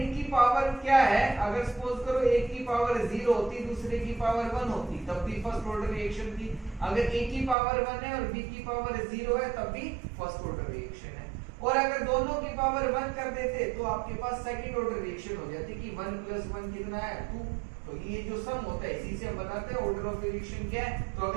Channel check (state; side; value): drops out; left; at 7.6 s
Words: पावर क्या है, अगर सपोज करो एक की पावर 0 होती, दूसरे की पावर 1 होती, तब भी फर्स्ट ऑर्डर रिएक्शन थी। अगर A की पावर 1 है और B की पावर 0 है तब भी फर्स्ट ऑर्डर रिएक्शन है। और अगर दोनों की पावर 1 कर देते तो आपके पास सेकंड ऑर्डर रिएक्शन हो जाती कि 1 + 1 कितना है, 2। तो ये जो सम होता है इसी से हम बताते हैं ऑर्डर ऑफ रिएक्शन क्या है। तो